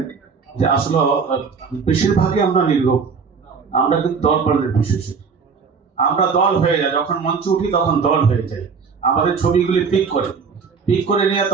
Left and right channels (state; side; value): quieter; left; 5.6 dB